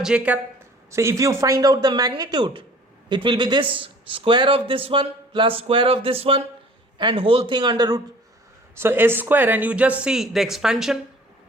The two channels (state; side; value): normal; both; correlation 0.50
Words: cap. So if you find out the magnitude, it will be this square of this one plus square of this one and whole thing under root. So S square, and you just see the expansion.